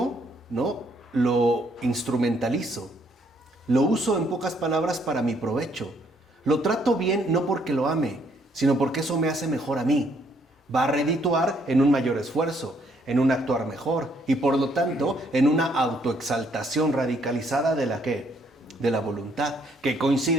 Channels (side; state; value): both; normal; correlation 0.69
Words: ¿no? Lo instrumentalizo. Lo uso en pocas palabras para mi provecho. Lo trato bien no porque lo ame, sino porque eso me hace mejor a mí. Va a redituar en un mayor esfuerzo, en un actuar mejor y por lo tanto en una autoexaltación radicalizada de la ¿qué? De la voluntad, que